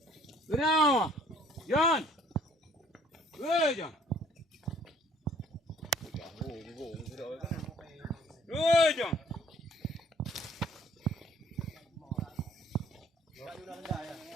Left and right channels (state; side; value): normal; both; correlation 0.58